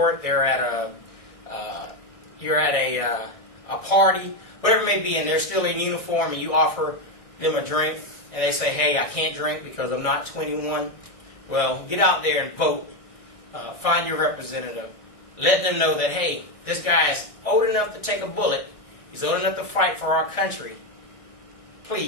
they're at you're at a party, whatever it may be, and they're still in uniform, and you offer them a drink, and they say, hey, I can't drink because I'm not 21. Well, get out there and vote. Find your representative. Let them know that, hey, this guy is old enough to take a bullet. He's old enough to fight for our country.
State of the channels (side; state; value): right; late; 1.6 ms